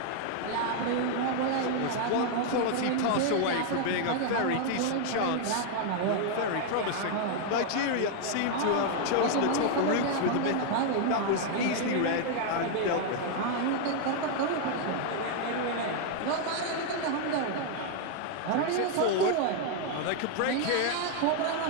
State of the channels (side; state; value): both; different; correlation 0.00